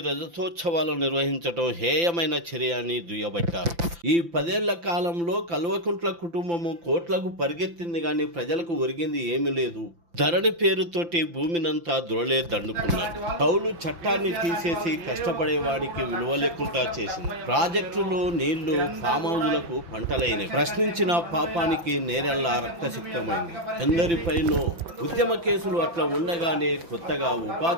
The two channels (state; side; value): late; left; 5.9 ms